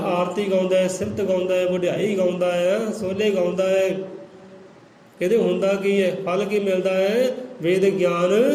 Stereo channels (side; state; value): both; identical; correlation 1.00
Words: ਗਾਉਂਦਾ ਹੈ, ਸਿਫਤ ਗਾਉਂਦਾ ਹੈ, ਵਡਿਆਈ ਗਾਉਂਦਾ ਹੈ, ਸੋਲੇ ਗਾਉਂਦਾ ਹੈ, ਕਹਿੰਦੇ ਹੁੰਦਾ ਕੀ ਹੈ, ਫਲ ਕੀ ਮਿਲਦਾ ਹੈ? ਵੇਦ ਗਿਆਨ